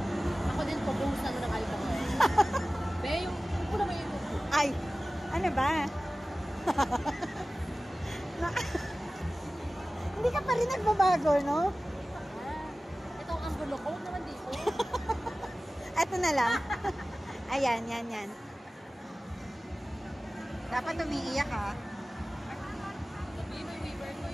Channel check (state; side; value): normal; both; correlation 0.97